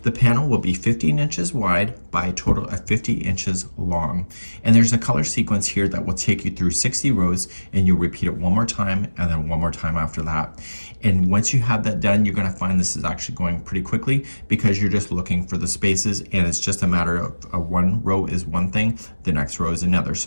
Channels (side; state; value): both; inverted; correlation -1.00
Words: The panel will be 15 inches wide by a total of 50 inches long. And there's a color sequence here that will take you through 60 rows, and you'll repeat it one more time and then one more time after that. And once you have that done, you're going to find this is actually going pretty quickly because you're just looking for the spaces, and it's just a matter of one row is one thing, the next row is another.